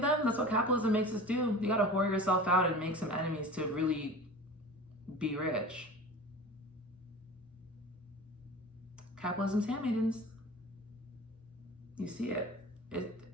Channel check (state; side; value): normal; both; correlation 0.37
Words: That's what capitalism makes us do. You gotta whore yourself out and make some enemies to really be rich. Capitalism's handmaidens. You see it.